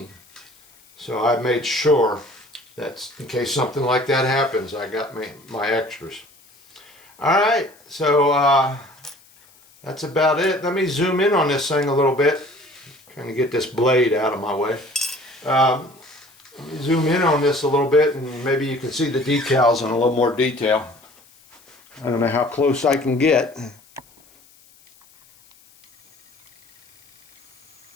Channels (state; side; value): noise; left; hiss, 29 dB below the sound